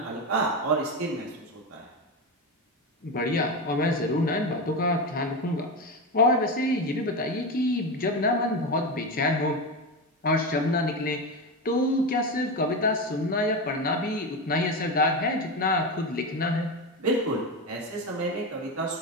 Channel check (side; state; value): both; normal; correlation 0.17